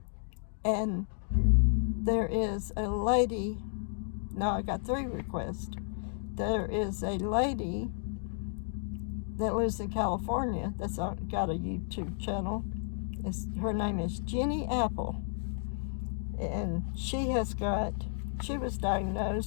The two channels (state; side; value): silent; right; digital silence